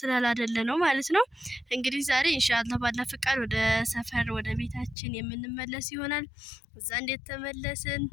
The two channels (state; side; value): drops out; right; at 5.0 s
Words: ስላላደለ ነው ማለት ነው። እንግዲህ ዛሬ ኢንሻአላህ ባላ ፍቃድ ወደ ሰፈር ወደ ቤታችን የምንመለስ ይሆናል። እዛ እንዴት ተመለስን